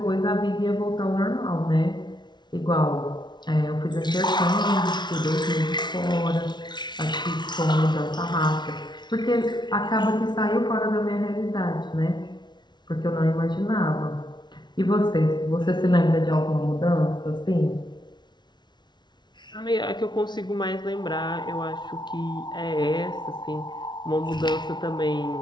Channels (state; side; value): late; right; 0.21 ms